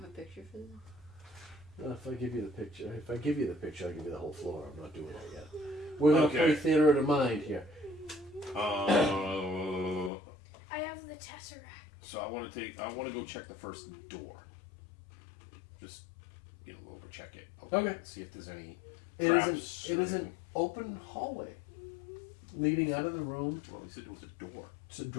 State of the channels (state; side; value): drops out; right; at 10.1 s